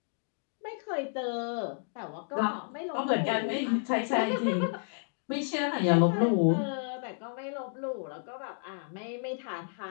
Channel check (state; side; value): silent; right; digital silence